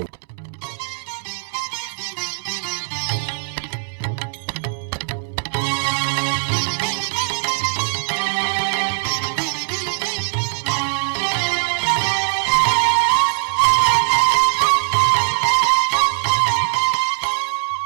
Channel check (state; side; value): silent; left; 65 dB below the other